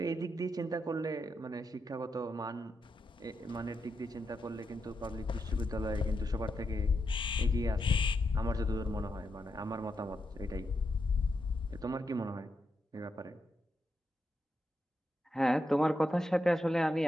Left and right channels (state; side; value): normal; both; correlation 0.84